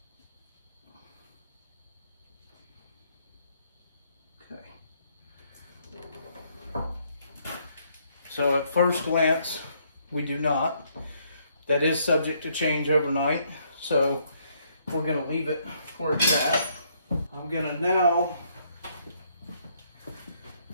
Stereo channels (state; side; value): inverted; both; correlation -0.70